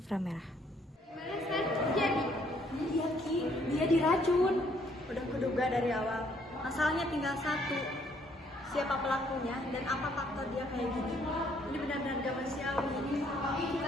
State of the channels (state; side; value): normal; both; correlation 0.66